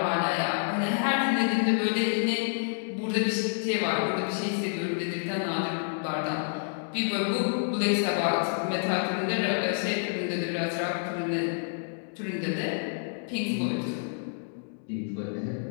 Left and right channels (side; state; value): right; silent; digital silence